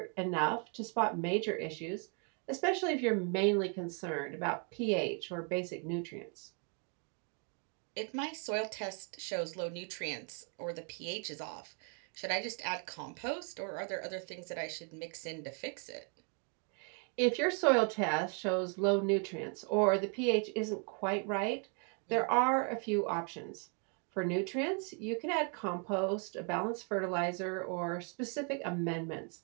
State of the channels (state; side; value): quieter; left; 38.1 dB